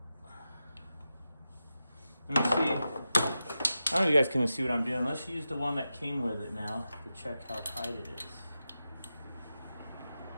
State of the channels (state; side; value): inverted; both; correlation -0.91